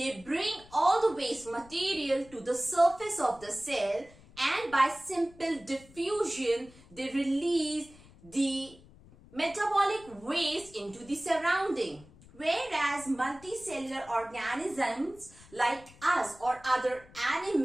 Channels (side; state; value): left; noise; rumble, 23 dB below the sound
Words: bring all the waste material to the surface of the cell, and by simple diffusion, they release the metabolic waste into the surrounding. Whereas multicellular organisms like us or other